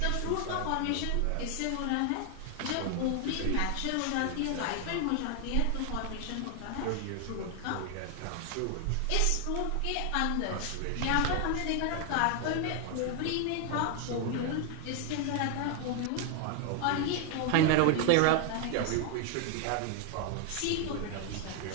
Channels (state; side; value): different; both; correlation 0.00